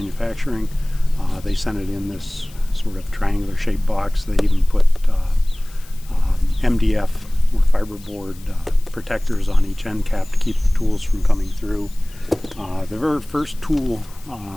They sent it in this sort of triangular shaped box. They even put MDF or fiberboard protectors on each end cap to keep the tools from coming through. The very first tool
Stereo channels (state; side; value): noise; left; hiss, 23 dB below the sound